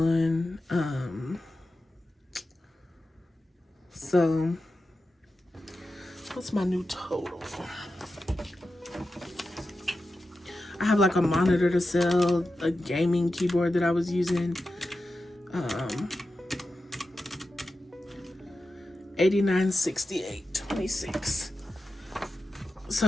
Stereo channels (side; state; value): both; normal; correlation 0.91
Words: So what's my new total? I have like a monitor to sell, a gaming keyboard that I was using. $89.68.26. So